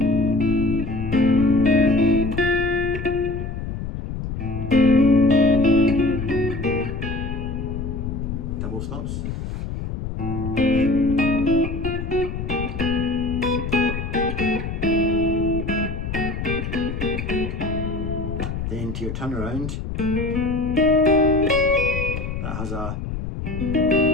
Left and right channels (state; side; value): noise; left; rumble, 5 dB below the sound